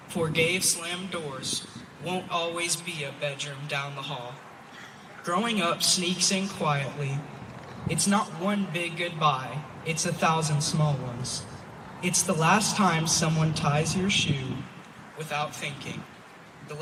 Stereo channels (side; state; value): both; identical; correlation 1.00